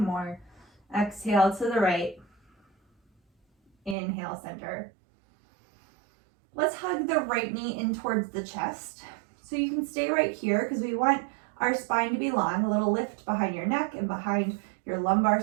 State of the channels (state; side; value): drops out; left; at 4.0 s